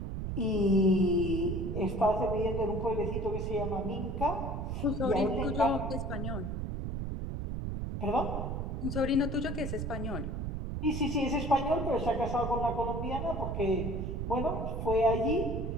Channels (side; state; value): right; noise; rumble, 3 dB below the sound